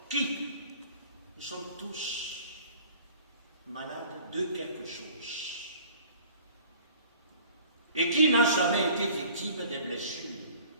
Qui? Nous sommes tous malades de quelque chose. Et qui n'a jamais été victime des blessures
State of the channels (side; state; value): both; inverted; correlation -0.49